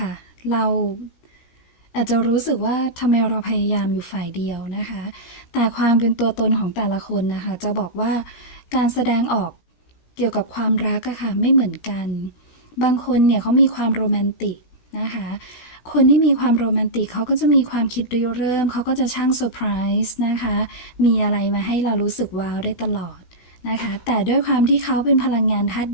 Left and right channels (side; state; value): right; late; 16 ms